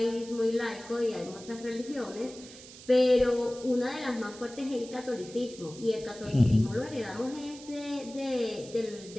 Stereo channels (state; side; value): noise; right; hiss, 17 dB below the sound